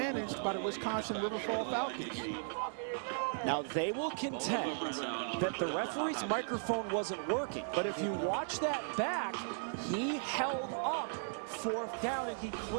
by the Wisconsin River Falls Falcons. Now, they will contend that the referee's microphone wasn't working, but if you watch that back, he held up 4th down, and he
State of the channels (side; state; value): left; silent; digital silence